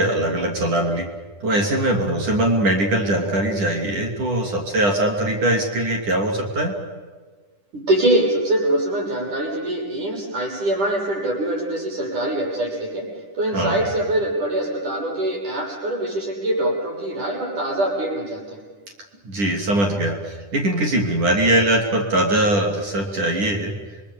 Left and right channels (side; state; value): left; late; 10 ms